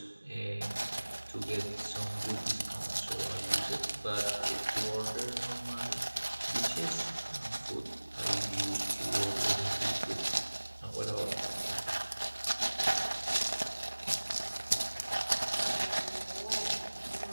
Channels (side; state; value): both; inverted; correlation -1.00